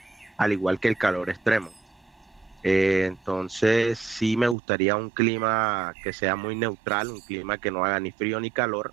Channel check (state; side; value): drops out; left; at 4.5 s